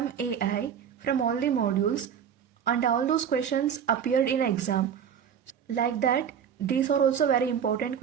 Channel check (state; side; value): quieter; left; 8.2 dB